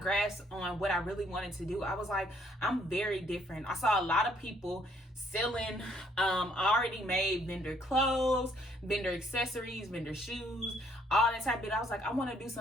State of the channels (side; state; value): both; normal; correlation 0.66